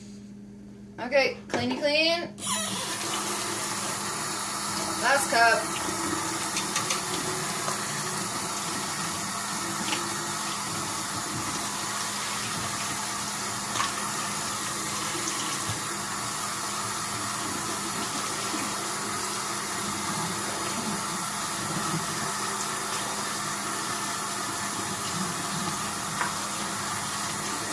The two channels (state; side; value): identical; both; correlation 1.00